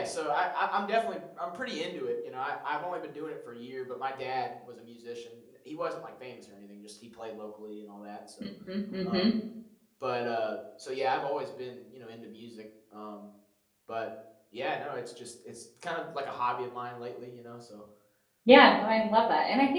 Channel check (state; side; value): identical; both; correlation 1.00